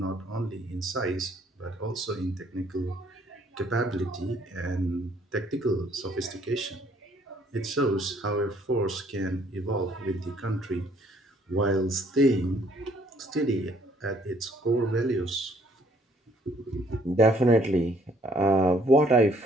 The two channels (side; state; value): both; normal; correlation 0.63